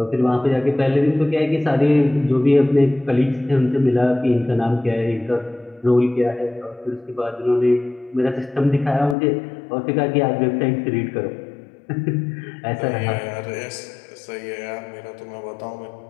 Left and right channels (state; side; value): drops out; right; at 9.2 s